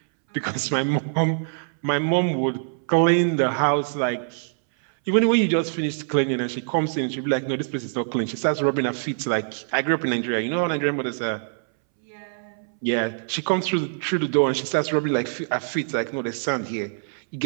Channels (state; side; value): silent; left; 62 dB below the other